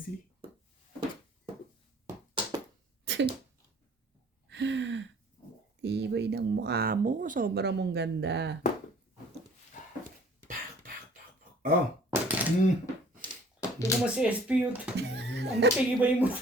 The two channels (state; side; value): normal; both; correlation 0.53